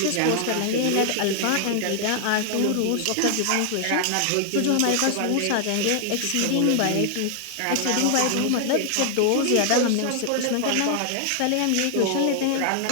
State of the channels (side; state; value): both; different; correlation 0.00